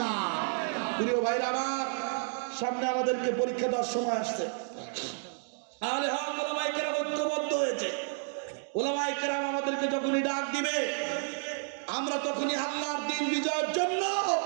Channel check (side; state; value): left; silent; 57 dB below the other